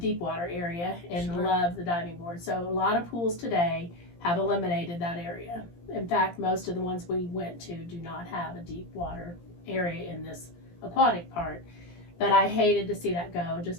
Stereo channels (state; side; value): late; right; 17 ms